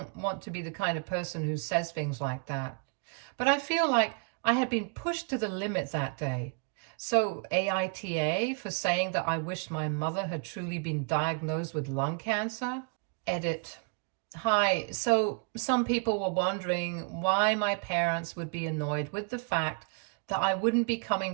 want to be the kind of person who says things like that. But I feel like I had been pushed to the limit that day. So AITA for saying that I wished my mother had truly been diagnosed with lung cancer? Edit. Hi, so some people were wondering why my parents would be annoyed with the fact that I wouldn't be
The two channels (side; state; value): left; quieter; 37.9 dB